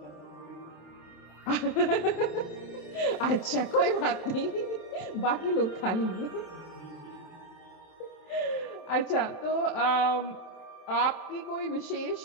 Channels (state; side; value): late; right; 27 ms